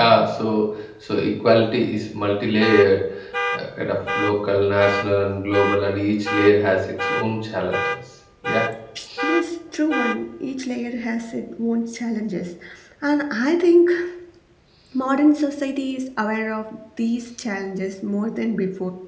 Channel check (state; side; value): identical; both; correlation 1.00